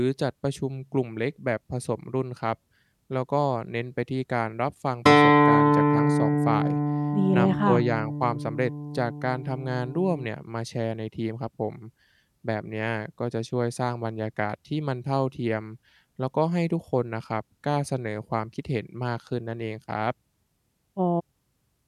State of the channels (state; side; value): identical; both; correlation 1.00